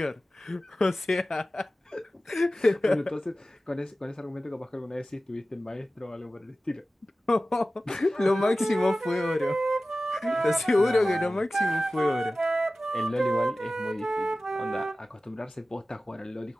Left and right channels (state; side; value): normal; both; correlation 0.96